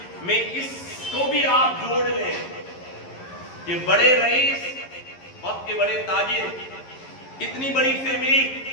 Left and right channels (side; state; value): right; late; 11 ms